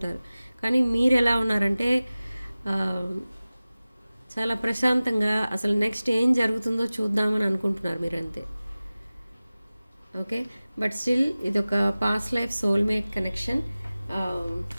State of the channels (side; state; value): both; inverted; correlation -0.97